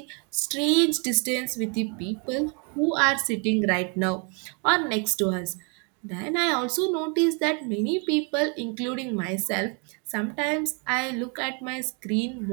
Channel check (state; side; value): quieter; left; 35.7 dB